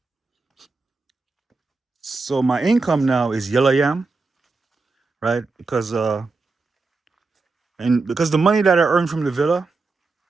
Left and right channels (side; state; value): left; quieter; 3.9 dB